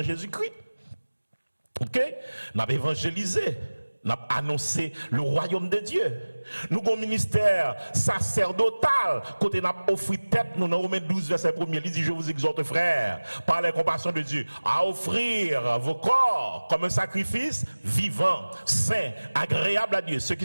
Jésus-Christ. OK? N'a évangélisé, n'a annoncé le royaume de Dieu. Nous avons un ministère sacerdotal. Côté n'a offert tête, nous dans Romains 12, verset 1er, il dit, je vous exhorte, frères, par la compassion de Dieu, à offrir vos corps comme un sacrifice vivant, saint, agréable à Dieu, ce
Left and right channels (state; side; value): inverted; both; correlation -1.00